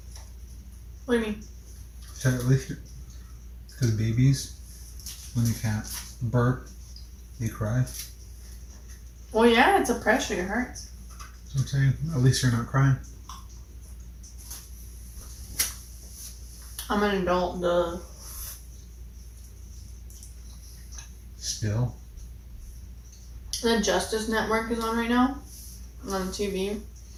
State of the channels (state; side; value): identical; both; correlation 1.00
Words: What do you mean? At least because babies, when they can't burp, they cry. Well, yeah, it's a pressure. It hurts. That's what I'm saying. At least you're not crying. I'm an adult, duh. Still. The Justice Network is on right now. On TV.